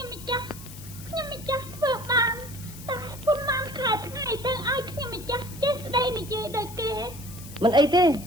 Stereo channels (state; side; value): noise; left; hiss, 16 dB below the sound